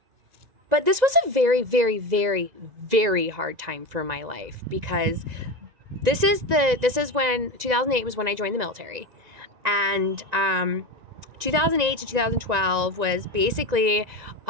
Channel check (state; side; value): late; left; 1.9 ms